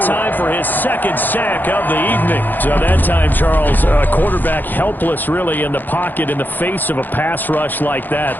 time for his 2nd sack of the evening. So that time, Charles, quarterback helpless really in the pocket in the face of a pass rush like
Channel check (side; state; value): right; late; 0.088 ms